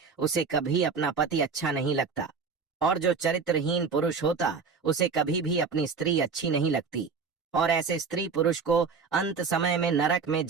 उसे कभी अपना पति अच्छा नहीं लगता, और जो चरित्रहीन पुरुष होता उसे कभी भी अपनी स्त्री अच्छी नहीं लगती, और ऐसे स्त्री पुरुष को अंत समय में नरक में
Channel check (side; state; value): left; quieter; 5.2 dB